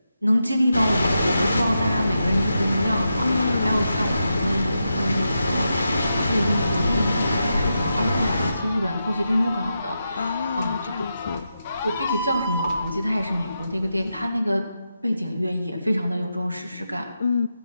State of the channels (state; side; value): inverted; both; correlation -0.87